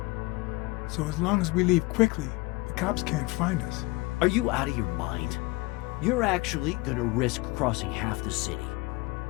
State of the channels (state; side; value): quieter; right; 23.2 dB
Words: So as long as we leave quickly, the cops can't find us. Are you out of your mind? You're actually gonna risk crossing half the city.